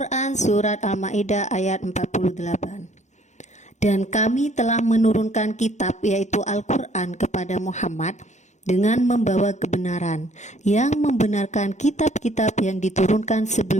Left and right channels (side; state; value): right; late; 0.34 ms